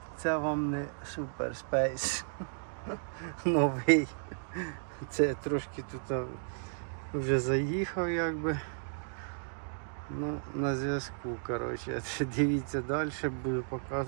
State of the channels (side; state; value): left; silent; digital silence